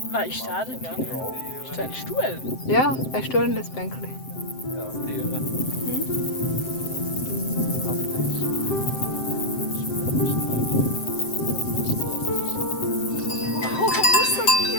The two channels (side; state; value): right; late; 7.7 ms